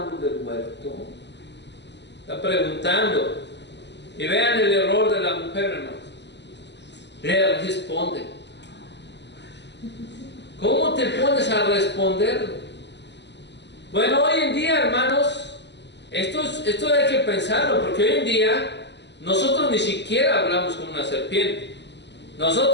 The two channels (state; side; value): late; right; 0.51 ms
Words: del huerto. Está preguntando. Y vean el error de la mujer, hermanos. Le responde. ¿Cómo te pones a responderlo? Bueno, hoy en día, hermanos, esto hay que pensarlo, porque hoy en día nosotros ni siquiera hablamos con una serpiente.